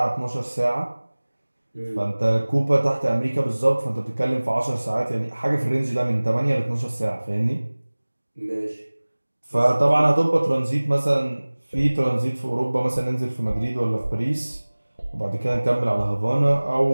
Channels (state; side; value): inverted; both; correlation -1.00